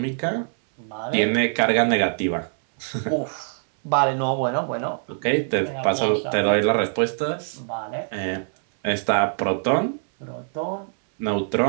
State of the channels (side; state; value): left; silent; 62 dB below the other